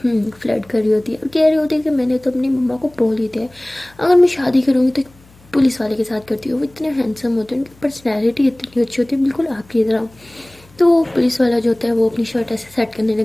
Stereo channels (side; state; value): left; noise; hum, 27 dB below the sound